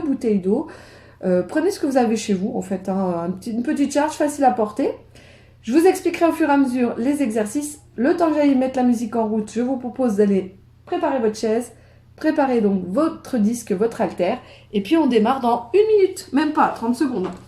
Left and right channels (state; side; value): identical; both; correlation 1.00